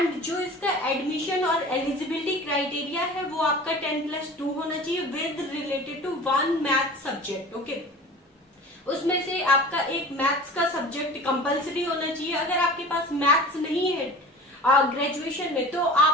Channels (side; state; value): both; normal; correlation 0.38